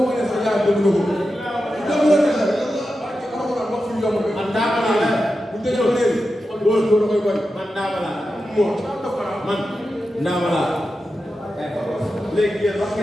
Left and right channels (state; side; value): normal; both; correlation 0.90